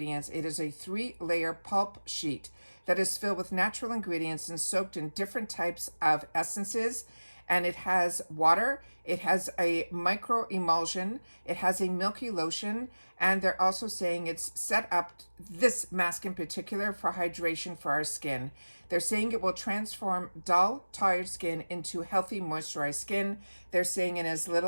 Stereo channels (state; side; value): inverted; both; correlation -1.00